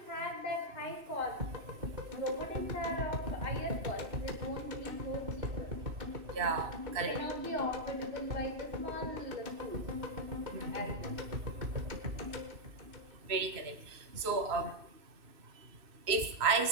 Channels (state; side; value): late; left; 2.6 ms